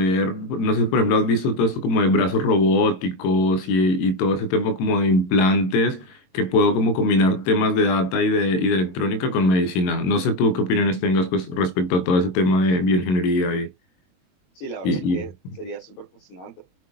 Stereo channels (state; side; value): late; right; 22 ms